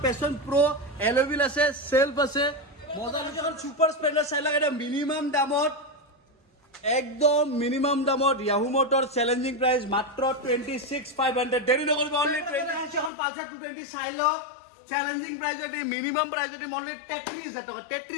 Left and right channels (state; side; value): drops out; right; at 13.1 s